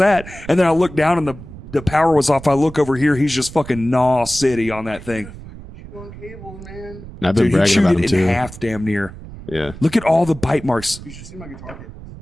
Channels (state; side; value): noise; right; rumble, 15 dB below the sound